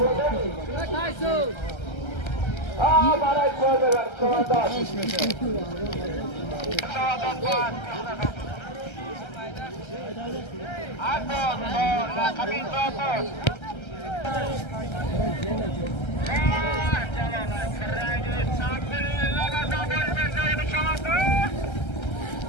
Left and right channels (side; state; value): right; late; 1.3 ms